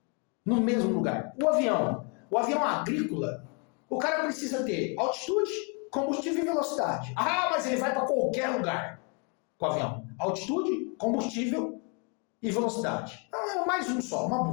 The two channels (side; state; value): right; quieter; 35.8 dB